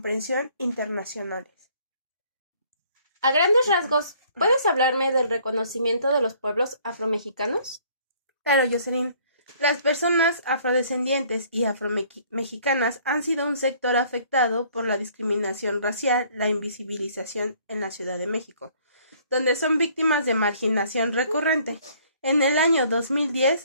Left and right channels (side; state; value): both; inverted; correlation -0.59